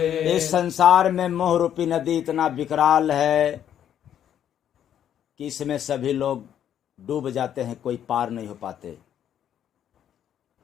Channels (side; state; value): right; quieter; 9.9 dB